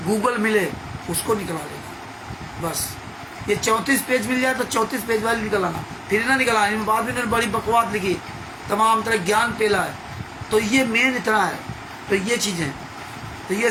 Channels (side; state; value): both; identical; correlation 1.00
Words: गूगल मिले उसको निकला लेना बस। ये 34 पेज मिल जाए तो 34 पेज वाली निकल आना, फिर ना निकल आना। बाद में इन्होंने बड़ी बकवास लिखी, तमाम तरह ज्ञान पेला है। तो ये मेन इतना है। तो ये चीज़ें, तो ये